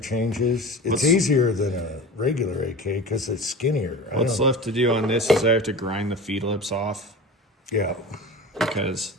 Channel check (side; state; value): both; normal; correlation 0.34